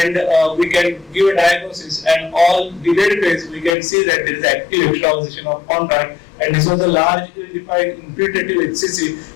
we can give a diagnosis, and all delayed phase we can see that there is active extravasation of contrast, and this was a large ill-defined infiltrative HCC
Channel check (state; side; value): drops out; right; at 3.8 s